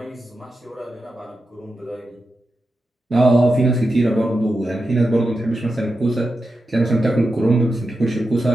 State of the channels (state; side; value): normal; both; correlation 0.89